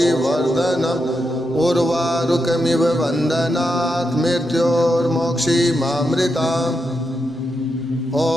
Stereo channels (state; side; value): normal; both; correlation 0.85